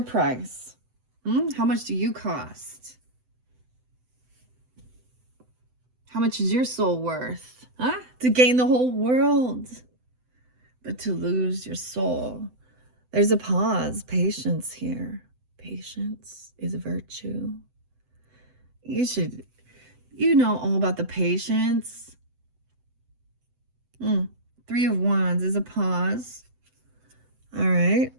price? How much do you cost? How much is your soul worth? Huh? To gain the whole world, but to lose your soul. There's a pause. Patience here. Patience is a virtue. You know all about the patience. 3 of Wands is a pause. All right.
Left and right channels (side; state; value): left; late; 7.9 ms